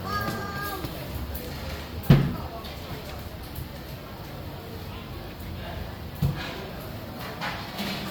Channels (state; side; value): identical; both; correlation 1.00